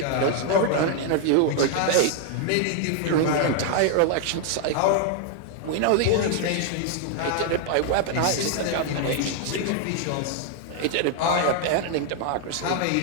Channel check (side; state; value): both; different; correlation 0.00